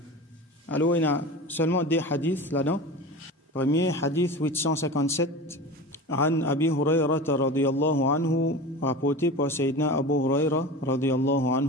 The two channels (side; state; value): both; normal; correlation 0.31